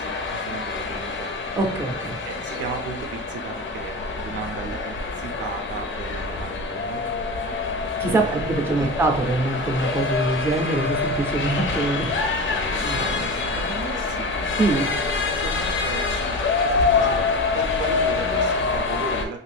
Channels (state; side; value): normal; both; correlation 0.25